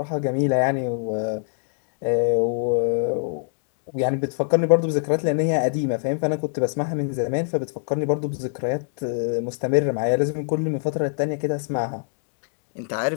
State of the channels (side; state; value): right; silent; digital silence